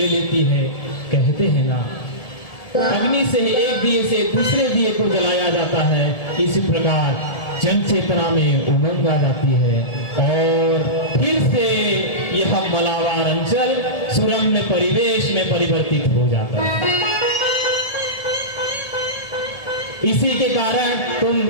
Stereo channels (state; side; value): late; right; 1.7 ms